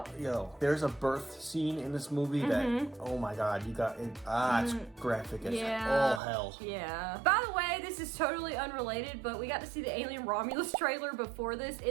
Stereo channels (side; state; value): left; drops out; at 6.2 s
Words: Yo, there's a birth scene in this movie that, oh my god, you got it. It's graphic as all hell. Yeah. By the way, this is totally unrelated, but we got to see the Alien Romulus trailer before this